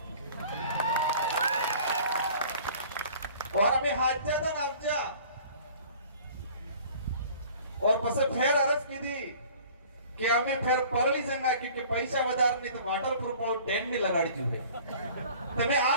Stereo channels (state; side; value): inverted; both; correlation -0.48